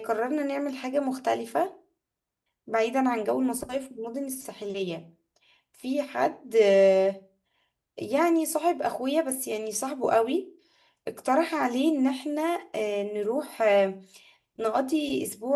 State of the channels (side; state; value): both; identical; correlation 1.00